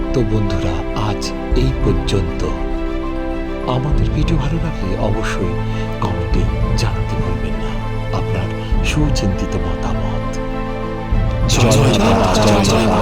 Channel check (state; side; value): identical; both; correlation 1.00